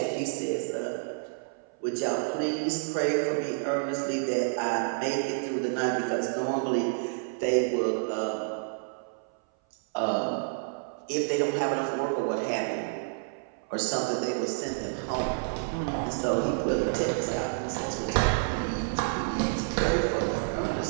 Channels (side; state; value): left; silent; 57 dB below the other